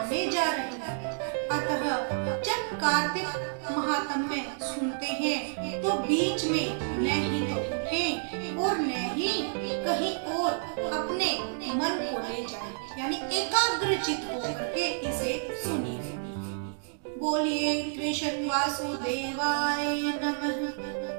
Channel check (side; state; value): left; silent; digital silence